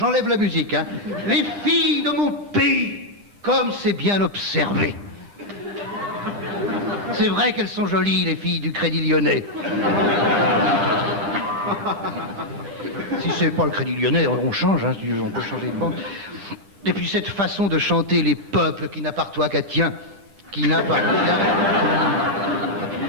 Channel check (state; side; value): late; left; 10 ms